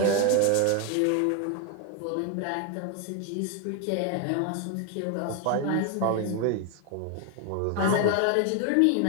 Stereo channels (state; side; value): different; both; correlation 0.01